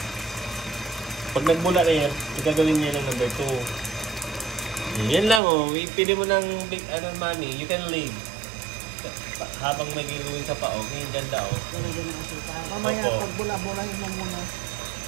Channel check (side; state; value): left; drops out; at 5.4 s